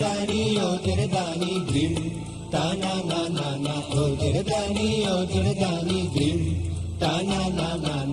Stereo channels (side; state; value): both; identical; correlation 1.00